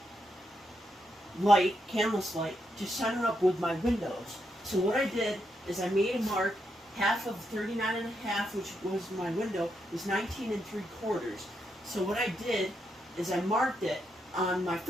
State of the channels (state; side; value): normal; both; correlation 0.81